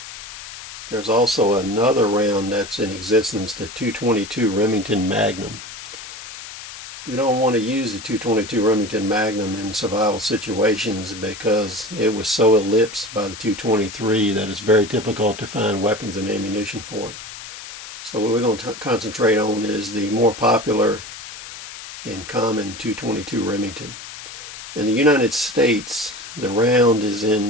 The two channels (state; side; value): noise; left; hiss, 13 dB below the sound